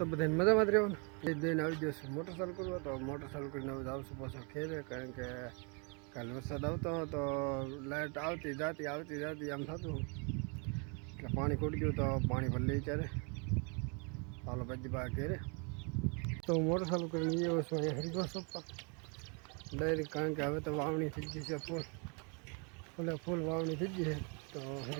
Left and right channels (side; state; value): left; quieter; 35.1 dB